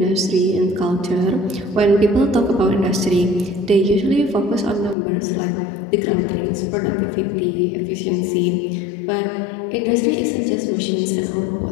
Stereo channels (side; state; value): right; drops out; at 5.0 s